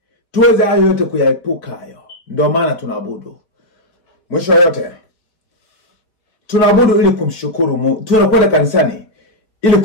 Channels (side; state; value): right; late; 4.8 ms